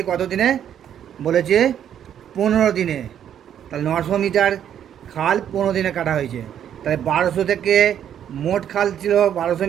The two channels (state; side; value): quieter; left; 9.6 dB